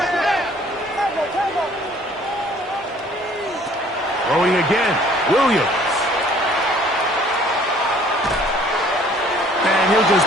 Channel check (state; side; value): normal; both; correlation 0.56